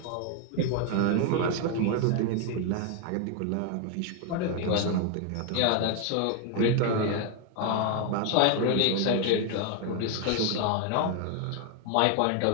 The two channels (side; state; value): both; different; correlation 0.01